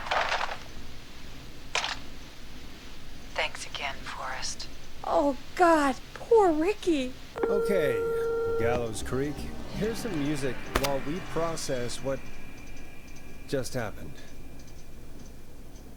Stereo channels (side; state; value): both; identical; correlation 1.00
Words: Thanks again, Forrest. Oh, God. Poor Ricky. Okay, Gallows Creek. Here's some music while we process what just happened.